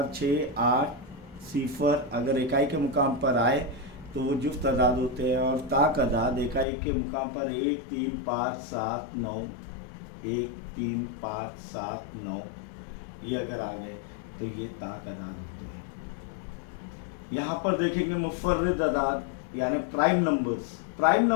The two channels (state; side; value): drops out; right; at 6.7 s